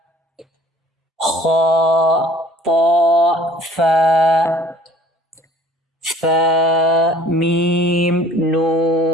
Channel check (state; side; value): normal; both; correlation 0.51